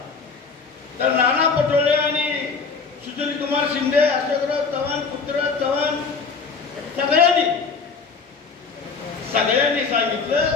तर नाना पटोले आणि सुशील कुमार शिंदे, अशोकराव चव्हाण, पृथ्वीराज चव्हाण सगळ्यांनी सांगितलं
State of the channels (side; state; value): right; quieter; 5.0 dB